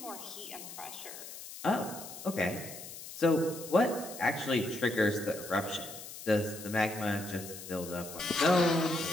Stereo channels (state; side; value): noise; left; hiss, 12 dB below the sound